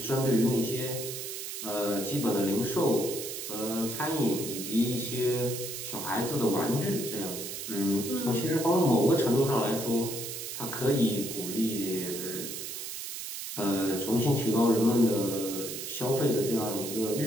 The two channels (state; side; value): noise; right; hiss, 7 dB below the sound